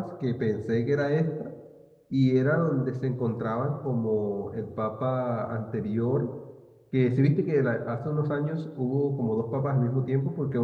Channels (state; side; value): identical; both; correlation 1.00